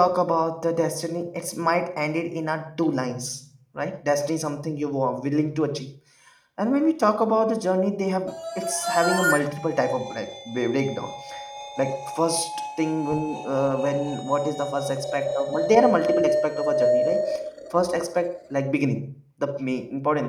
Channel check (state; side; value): identical; both; correlation 1.00